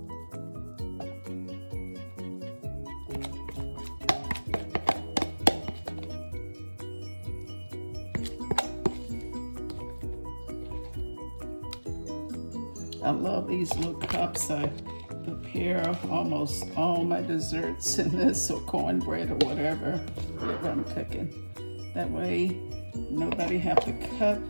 I love these little cups. I prepare almost all my desserts in this, or cornbread or whatever I'm cooking. That way, nobody have to cut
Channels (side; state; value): both; inverted; correlation -1.00